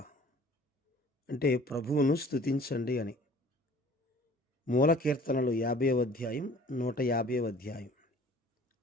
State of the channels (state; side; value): normal; both; correlation 0.50